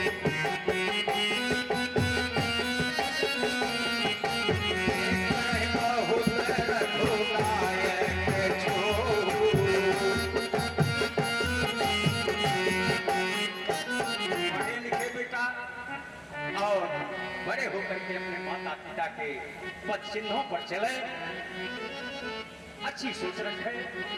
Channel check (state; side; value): identical; both; correlation 1.00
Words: बड़े होकर के अपने माता पिता के पद चिन्हों पर चले, अच्छी सोच रखे,